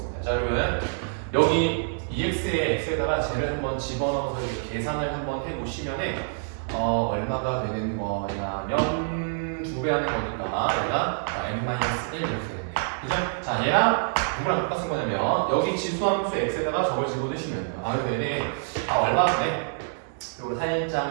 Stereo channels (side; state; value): left; silent; 61 dB below the other